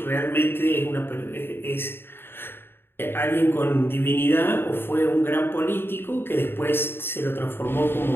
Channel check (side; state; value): right; late; 0.11 ms